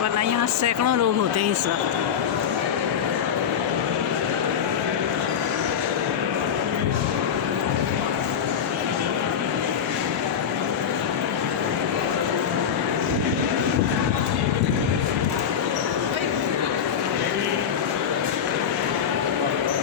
वरना यहाँ सैकड़ों लोग होते हैं इस वक्त।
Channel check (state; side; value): quieter; right; 7.9 dB